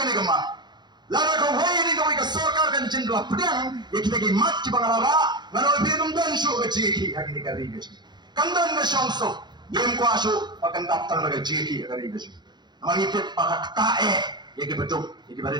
gani gama. Lara ko wei ni ko ka sarkar kan jindla pedang yeki tagi mat ki bangalara ngano binum dan shu keji yeki agini karwi keji. Kandan na shongso yem ko asu akan daftar naga jeki agari keji. Namang itit pakak tae yeki betul yeki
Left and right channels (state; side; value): late; left; 0.21 ms